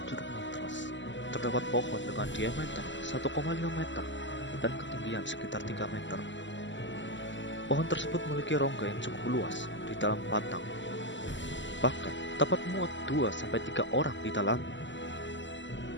Curug Mantras terdapat pohon dengan diameter 1,5 meter dan ketinggian sekitar 3 meter. Pohon tersebut memiliki rongga yang cukup luas di dalam batang, bahkan dapat muat 2-3 orang di dalamnya.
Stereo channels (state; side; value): late; right; 0.54 ms